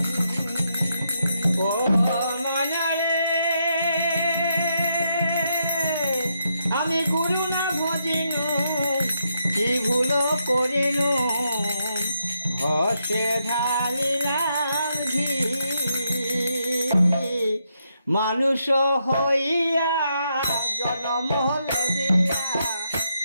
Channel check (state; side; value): inverted; both; correlation -0.80